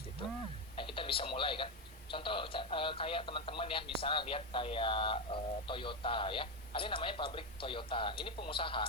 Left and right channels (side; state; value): both; normal; correlation 0.10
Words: gitu. Nah kita bisa mulai kan, contoh kayak teman-teman ya, misalnya lihat kayak Toyota ya, ada yang namanya pabrik Toyota, ini pengusaha